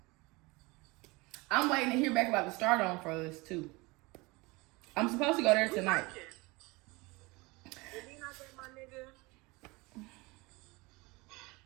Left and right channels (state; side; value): quieter; left; 24.4 dB